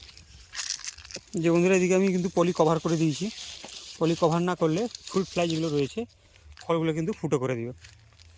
যে বন্ধুরা, এদিকে আমি কিন্তু পলি কভার করে দিয়েছি। পলি কভার না করলে ফ্রুট ফ্লাই যেগুলো রয়েছে ফলগুলো কিন্তু ফুটো করে দিবে।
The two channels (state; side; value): identical; both; correlation 1.00